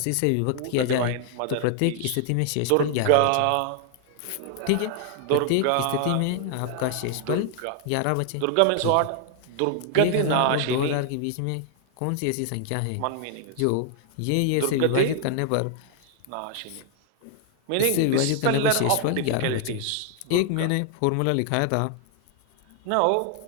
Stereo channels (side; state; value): both; different; correlation 0.00